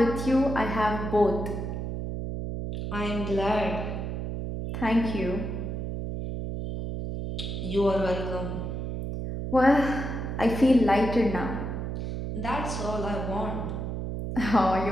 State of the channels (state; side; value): noise; right; hum, 4 dB below the sound